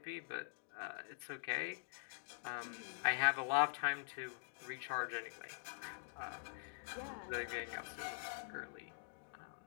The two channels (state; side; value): silent; right; digital silence